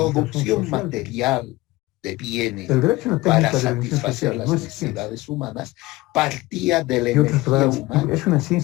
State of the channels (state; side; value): quieter; right; 20.0 dB